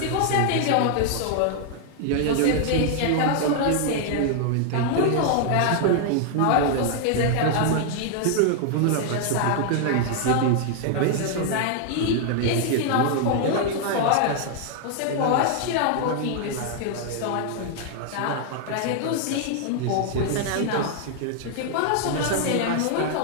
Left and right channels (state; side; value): different; both; correlation 0.00